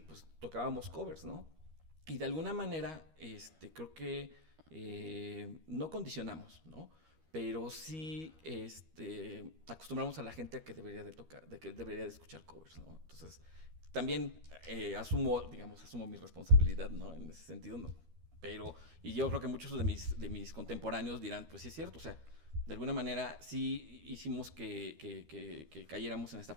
tocábamos covers, ¿no? Y de alguna manera, creo que no condicionamos, ¿no? Pero sí, acostumbramos a la gente a que debería de tocar, de que debería de escuchar covers, ¿no? Entonces, también asumo mi responsabilidad, ¿no? En ese sentido, ¿no? Pero, y yo creo que muchos de mis contemporáneos dirán, pues sí es cierto, o sea, de alguna manera sí hicimos que cayéramos en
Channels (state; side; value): late; left; 13 ms